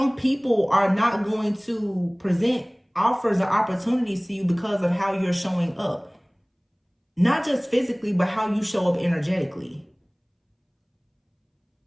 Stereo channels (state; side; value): identical; both; correlation 1.00